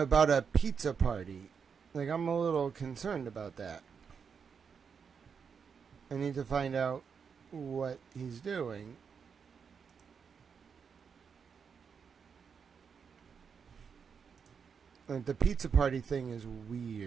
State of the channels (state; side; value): quieter; left; 6.4 dB